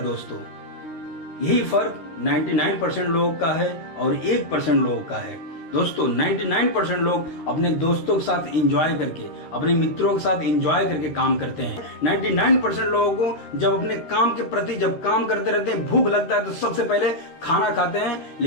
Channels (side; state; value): right; late; 13 ms